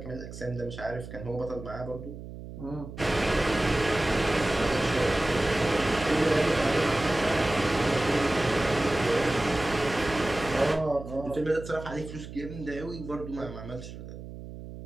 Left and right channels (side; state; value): right; noise; hum, 12 dB below the sound